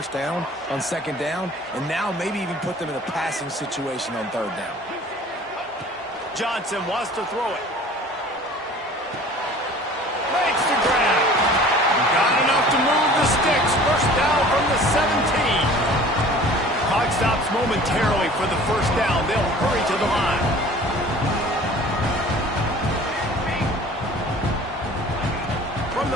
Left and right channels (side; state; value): both; normal; correlation 0.46